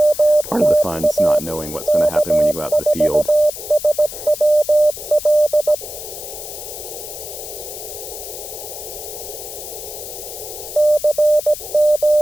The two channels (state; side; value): noise; left; hiss, 10 dB below the sound